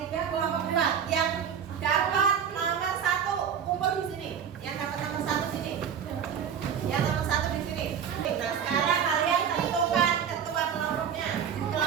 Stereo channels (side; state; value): left; quieter; 7.9 dB